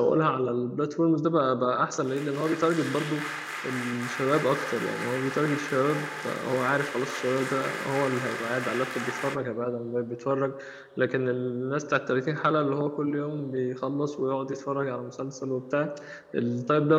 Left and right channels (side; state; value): both; identical; correlation 1.00